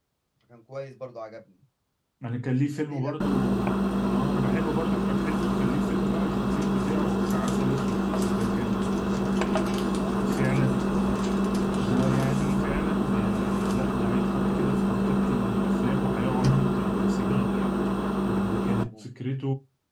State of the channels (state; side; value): identical; both; correlation 1.00